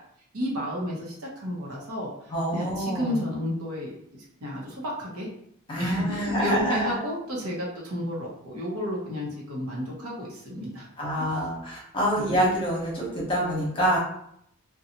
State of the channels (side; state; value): both; normal; correlation 0.32